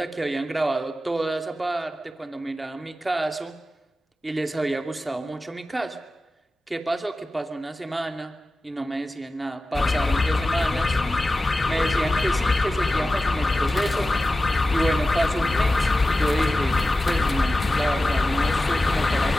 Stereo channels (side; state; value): both; normal; correlation 0.94